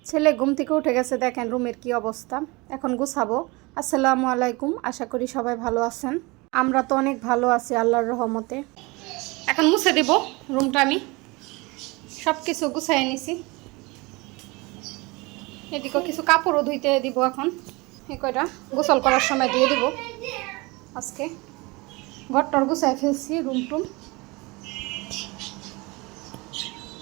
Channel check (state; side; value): quieter; left; 24.9 dB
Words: ছেলে ঘুম থেকে উঠে গেছে, দেখেন রুমের কি অবস্থা। এখন গুছাবো। আসসালামু আলাইকুম, আশা করি সবাই ভালো আছেন। আমরা তো অনেক ভালো আছি আল্লাহর রহমতে। এখন মুছে দেব রুমটা, আমি সব কিছু গুছাই নিছি। এদিকে কিছু কাপড়ও ধুইতে দিব, এখন এই কয়টা গোসল করার সময় দিয়ে দিব। আজকে ঘরটর গুছাই ফেলছি, রুম টুম